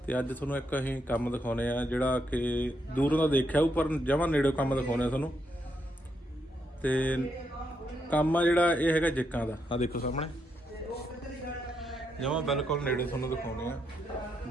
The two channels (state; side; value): normal; both; correlation 0.79